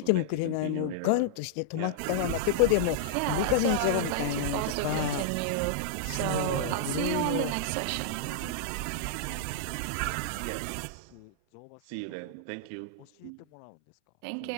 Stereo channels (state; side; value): different; both; correlation -0.02